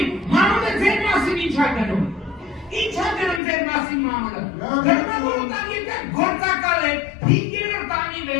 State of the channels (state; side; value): drops out; right; at 3.4 s